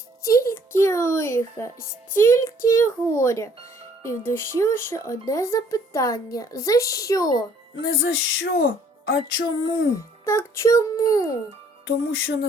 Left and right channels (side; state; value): both; normal; correlation 0.60